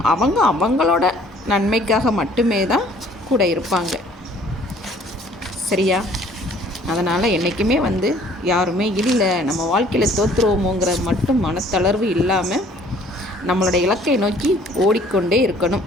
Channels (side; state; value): both; normal; correlation 0.57